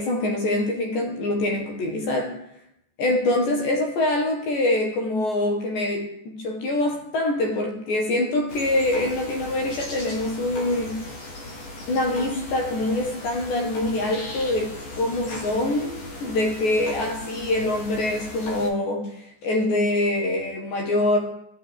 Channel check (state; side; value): late; right; 14 ms